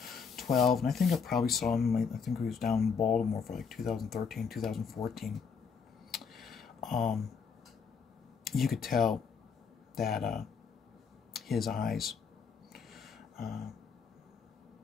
and I think I probably saw him, I think he was down in Baltimore for like 2013, 2014. You could tell that his eyes,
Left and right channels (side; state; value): right; quieter; 6.0 dB